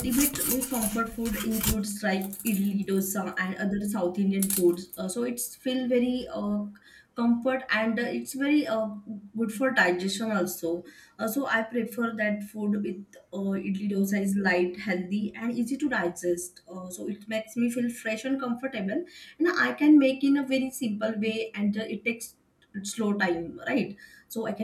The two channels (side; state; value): both; identical; correlation 1.00